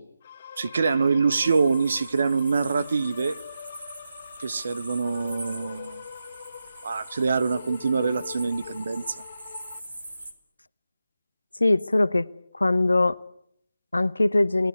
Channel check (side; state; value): both; inverted; correlation -0.90